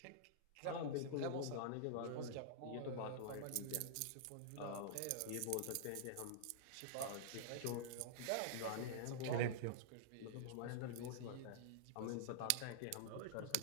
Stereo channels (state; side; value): different; both; correlation -0.02